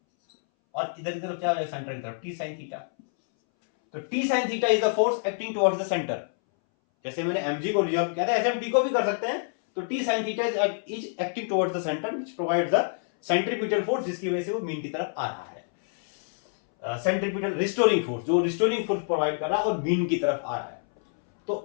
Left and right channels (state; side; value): silent; right; 60 dB below the other